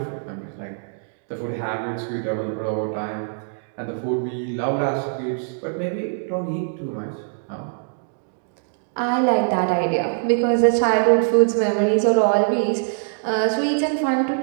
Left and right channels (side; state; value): left; silent; digital silence